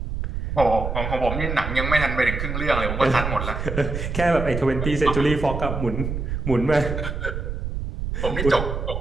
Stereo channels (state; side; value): noise; right; rumble, 4 dB below the sound